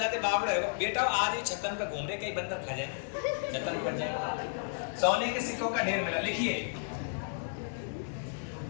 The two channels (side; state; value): right; silent; digital silence